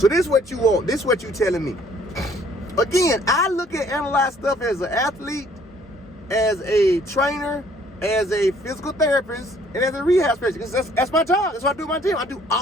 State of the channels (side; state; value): both; normal; correlation 0.60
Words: this is what you want. This is what you telling me. Again, I look at analyze stuff as an athlete, as a trainer, as a physical therapist, and as a rehab specialist. That's my job. That's what I do in my gym. I do